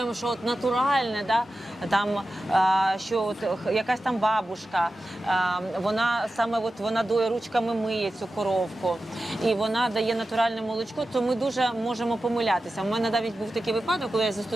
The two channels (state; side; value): normal; both; correlation 0.93